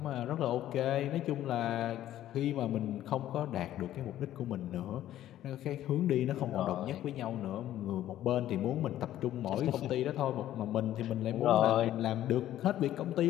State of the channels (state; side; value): quieter; right; 12.8 dB